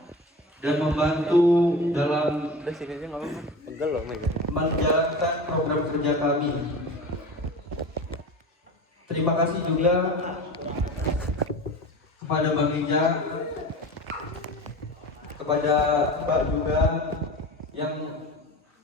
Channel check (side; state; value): both; normal; correlation 0.32